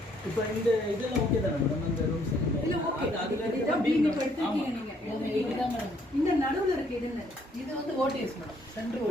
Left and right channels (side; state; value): both; normal; correlation 0.66